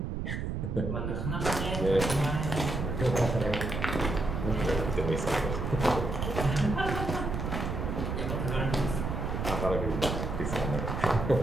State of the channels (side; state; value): right; noise; rumble, 2 dB below the sound